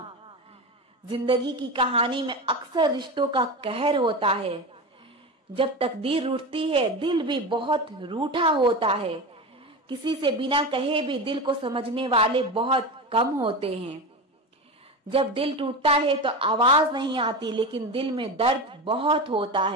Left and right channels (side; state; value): both; normal; correlation 0.23